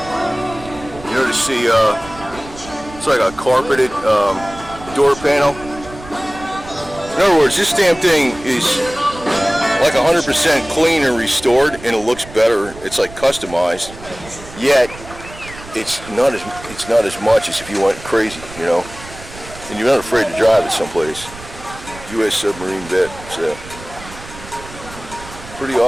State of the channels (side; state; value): right; noise; rumble, 16 dB below the sound